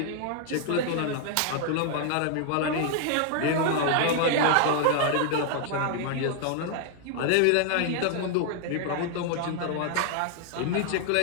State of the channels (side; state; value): both; different; correlation 0.00